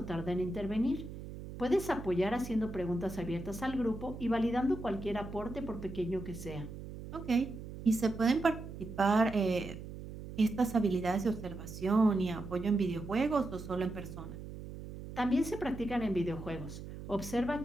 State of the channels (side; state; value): right; noise; hum, 11 dB below the sound